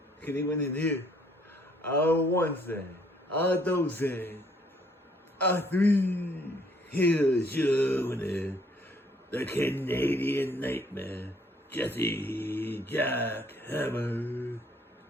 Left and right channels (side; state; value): both; normal; correlation 0.64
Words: Can he win in here? One say. Two say. Three. Here's your winner. The Canadian Nightmare, Jesse Jackhammer.